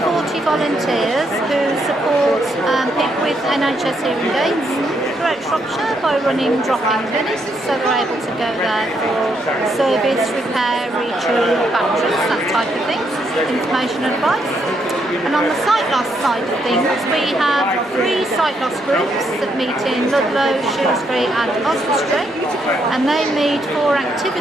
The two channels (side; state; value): both; normal; correlation 0.76